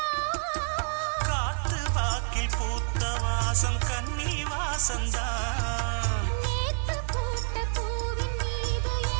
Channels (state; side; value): silent; left; 59 dB below the other